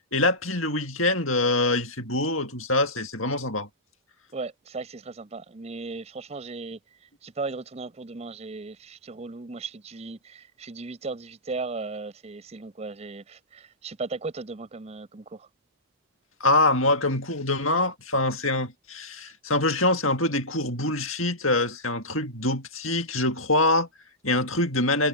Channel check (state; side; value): normal; both; correlation -0.15